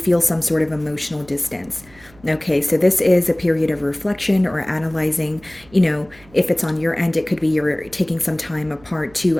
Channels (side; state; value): right; noise; hum, 26 dB below the sound